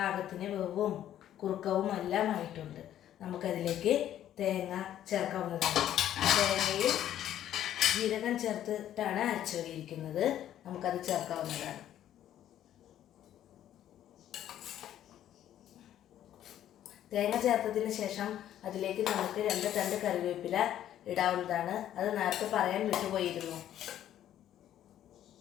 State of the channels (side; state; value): right; quieter; 11.5 dB